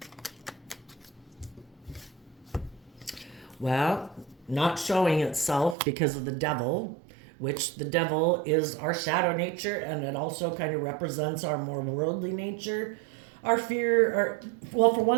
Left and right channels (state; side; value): drops out; left; at 5.8 s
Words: Well, not showing itself because of the devil, which the devil is our shadow nature, and it also kind of represents our more worldly nature. Our fear, well, for